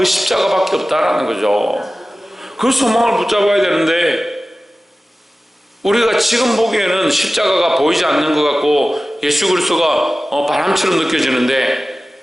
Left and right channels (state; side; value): normal; both; correlation 0.96